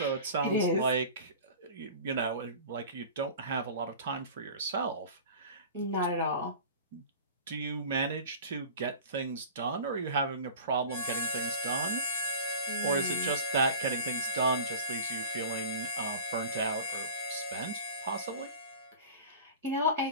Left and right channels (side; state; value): both; inverted; correlation -0.38